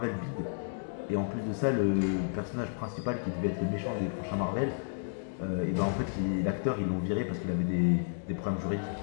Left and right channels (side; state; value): right; silent; digital silence